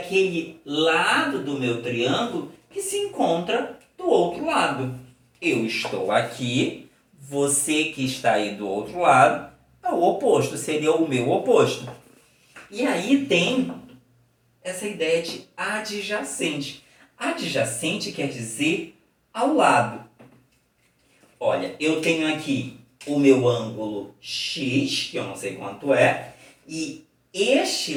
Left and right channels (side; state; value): both; identical; correlation 1.00